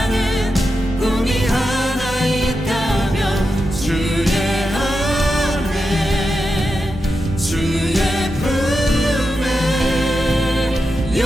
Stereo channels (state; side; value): normal; both; correlation 0.88